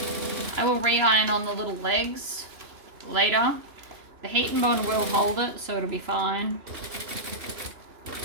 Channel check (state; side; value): late; left; 2.9 ms